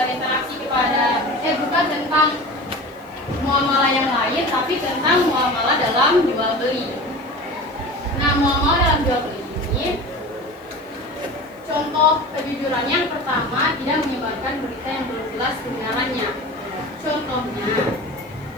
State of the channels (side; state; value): right; noise; hiss, 29 dB below the sound